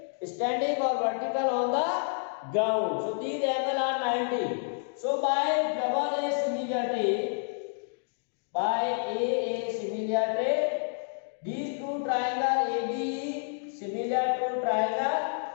standing or vertical on the ground. So these angles are 90. So by double A similarity, these two triangle ABE similar to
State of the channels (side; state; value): right; silent; digital silence